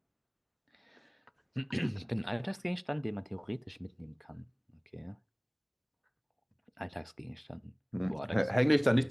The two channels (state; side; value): identical; both; correlation 1.00